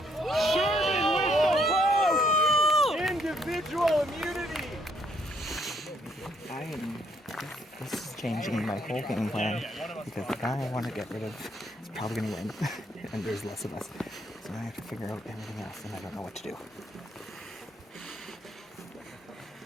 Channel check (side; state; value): both; normal; correlation 0.69